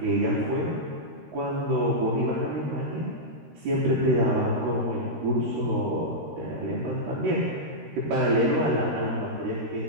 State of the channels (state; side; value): late; left; 13 ms